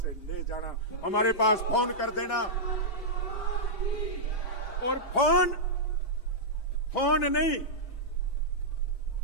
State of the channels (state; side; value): late; right; 4.7 ms